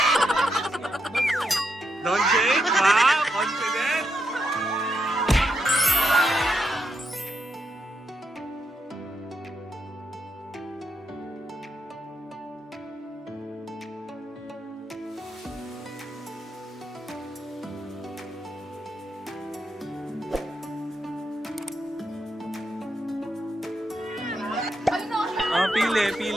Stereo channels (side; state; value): both; normal; correlation 0.82